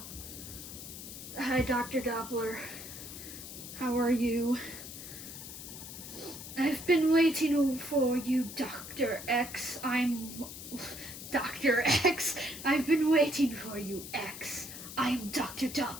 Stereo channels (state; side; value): noise; left; hiss, 11 dB below the sound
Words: Hi, Dr. Doppler. How are you? I've been waiting for you, Dr. X. Dr. X. I've been waiting for you, X. I'm Dr.